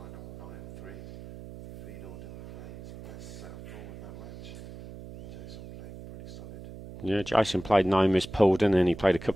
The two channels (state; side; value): noise; right; hum, 14 dB below the sound